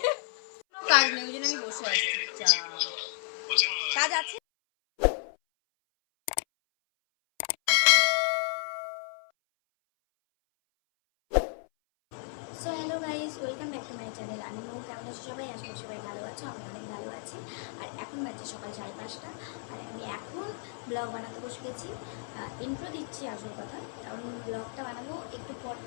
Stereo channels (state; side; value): silent; right; 56 dB below the other